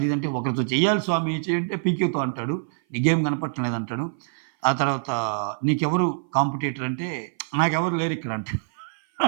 ఇదంటే ఒకరితో చెయ్యాలి స్వామి చేయంటే పీకేతో అంటాడు. నీ గేమ్ కనపడటం లేదంటాడు. ఆ తర్వాత నీకెవరు కాంపిటీటర్ అంటే నాకెవరు లేరిక్కడ అంటాడు.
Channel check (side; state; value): left; silent; 57 dB below the other